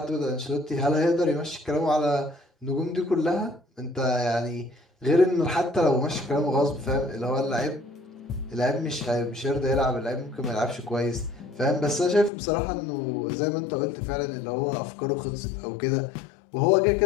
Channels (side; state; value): right; drops out; at 12.3 s